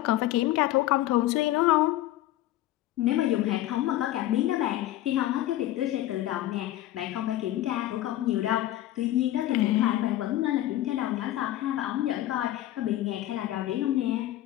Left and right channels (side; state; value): right; quieter; 14.5 dB